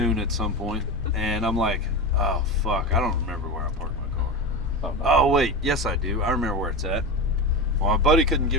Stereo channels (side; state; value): both; normal; correlation 0.22